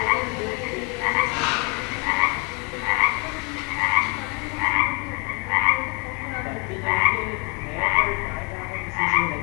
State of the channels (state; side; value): quieter; right; 31.9 dB